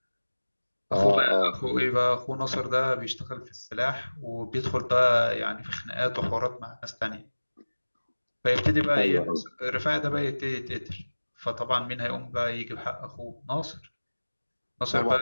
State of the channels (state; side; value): inverted; both; correlation -1.00